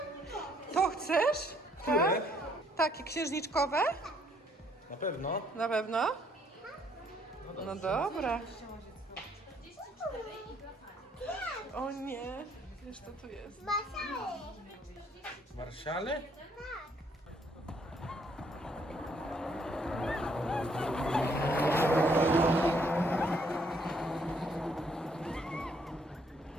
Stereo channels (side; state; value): both; normal; correlation 0.67